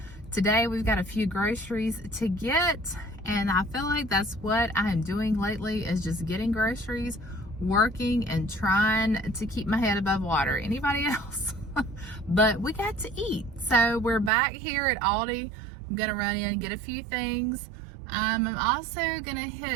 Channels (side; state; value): left; drops out; at 14.3 s